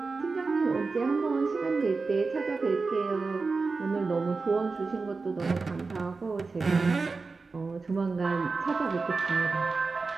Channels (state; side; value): quieter; left; 4.2 dB